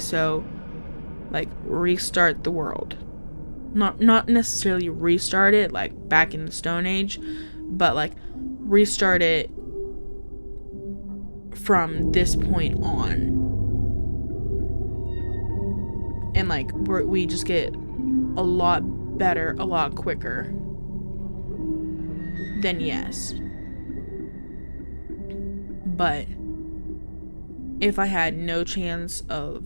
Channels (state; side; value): inverted; both; correlation -1.00